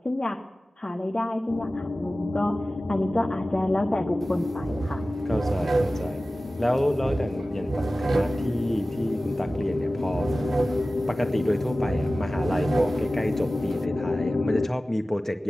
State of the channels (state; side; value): normal; both; correlation 0.96